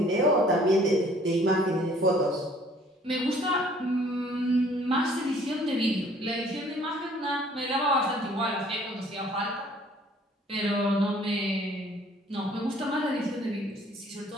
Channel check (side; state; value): both; normal; correlation 0.57